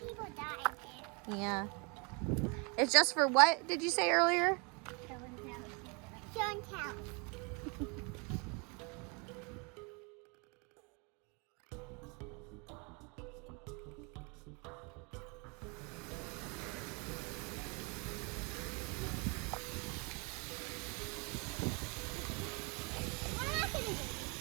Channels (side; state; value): left; quieter; 32.1 dB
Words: die there. Yeah. It's just for what did you say earlier? Show and tell.